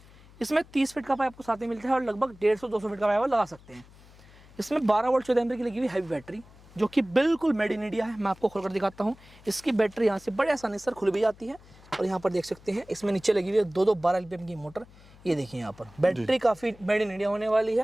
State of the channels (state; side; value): noise; left; hum, 24 dB below the sound